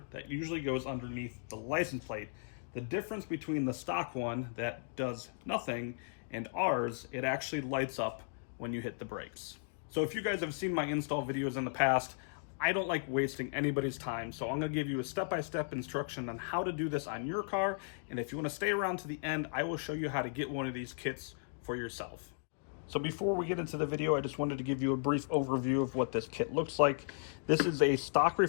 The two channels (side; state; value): right; silent; digital silence